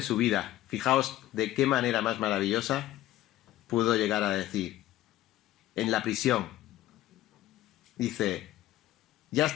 su vida, fijaos de qué manera más maravillosa pudo llegar a decir, en la prisión, dice, ya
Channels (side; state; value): right; quieter; 14.7 dB